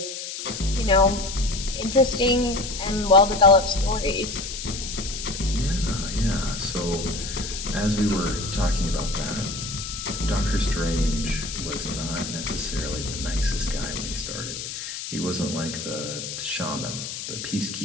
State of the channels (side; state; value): left; noise; hiss, 7 dB below the sound